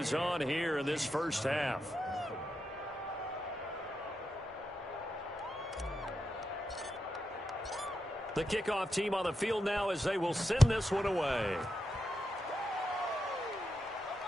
on here in this first half. The kickoff team on the field now as they will send this one away.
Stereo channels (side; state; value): both; normal; correlation 0.86